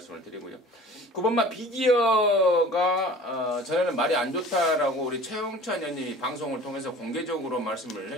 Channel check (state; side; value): normal; both; correlation 0.45